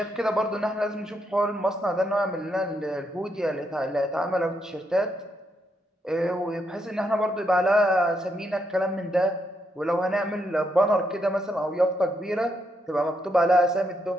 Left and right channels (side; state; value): both; normal; correlation 0.78